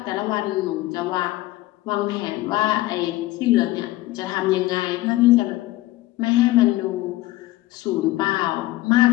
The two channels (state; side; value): quieter; right; 17.6 dB